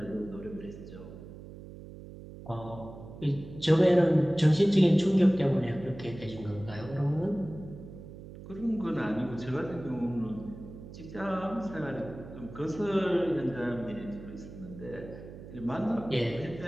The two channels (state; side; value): noise; right; hum, 14 dB below the sound